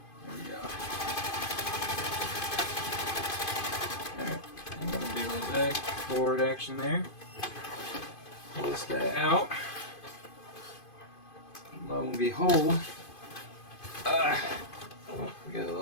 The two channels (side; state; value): right; late; 2.5 ms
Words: There we go. Alright, I'm going to do a little back forward action there. Pull this guy out. Lo and behold, We got